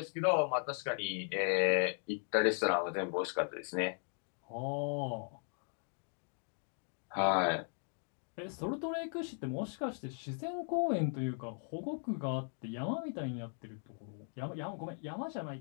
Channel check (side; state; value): right; silent; 53 dB below the other